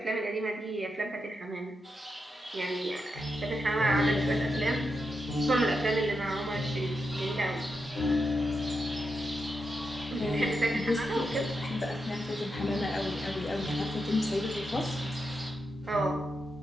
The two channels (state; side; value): normal; both; correlation 0.86